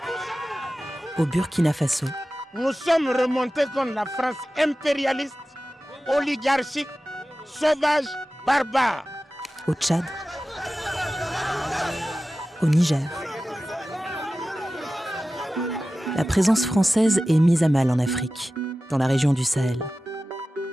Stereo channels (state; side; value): normal; both; correlation 0.95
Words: au Burkina Faso. Nous sommes remontés contre la France impérialiste, oligarchique, sauvage, barbare. Au Tchad, au Niger. La présence française est mise à mal en Afrique, dans la région du Sahel.